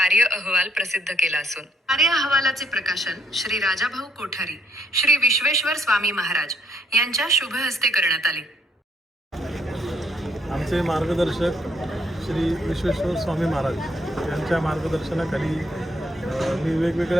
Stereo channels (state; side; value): normal; both; correlation 0.70